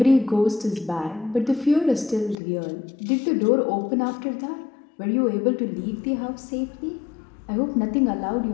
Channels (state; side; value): drops out; right; at 2.4 s